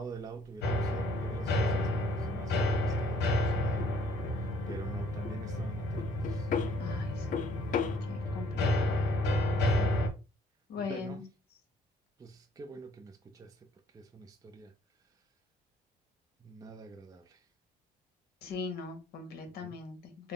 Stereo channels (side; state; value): both; normal; correlation 0.61